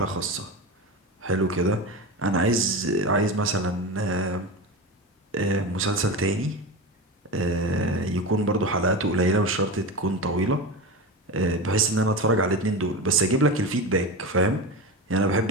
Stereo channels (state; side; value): normal; both; correlation 0.23